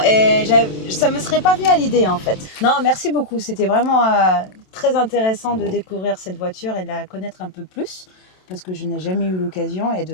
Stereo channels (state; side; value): late; right; 27 ms